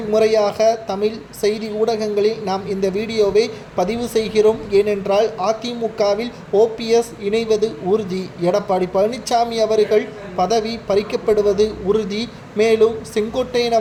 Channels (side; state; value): both; identical; correlation 1.00